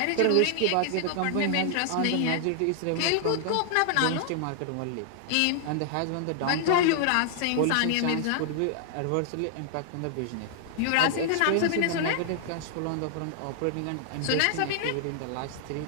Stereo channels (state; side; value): different; both; correlation 0.00